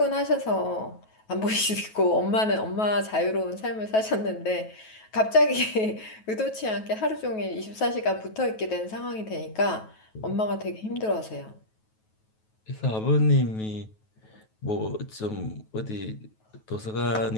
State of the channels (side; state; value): right; late; 9.3 ms